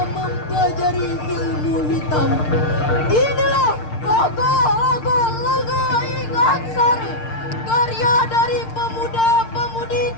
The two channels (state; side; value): late; right; 6.6 ms